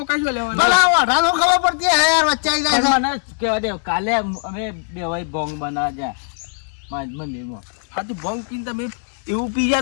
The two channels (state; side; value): silent; right; 66 dB below the other